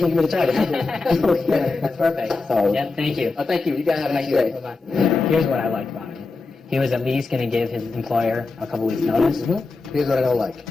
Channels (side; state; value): right; quieter; 3.8 dB